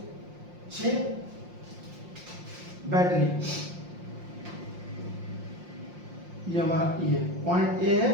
6 बैटरी। ये हमारा ये पॉइंट ए है,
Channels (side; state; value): left; late; 5.7 ms